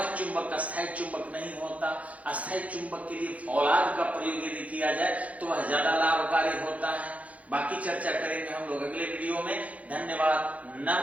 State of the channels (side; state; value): left; late; 0.067 ms